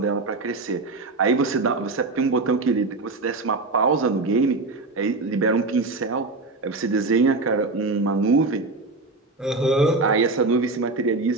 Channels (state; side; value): quieter; left; 3.4 dB